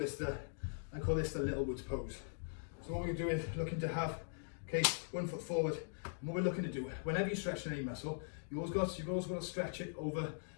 the little woods pose. So what we're going to do is looking to have, okay, one foot forward. And what we're looking to do, whenever you stretch any muscle, you've always got to stretch it over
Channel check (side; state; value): right; silent; digital silence